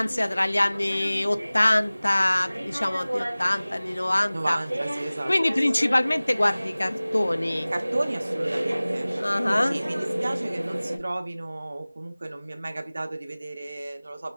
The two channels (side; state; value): both; inverted; correlation -0.99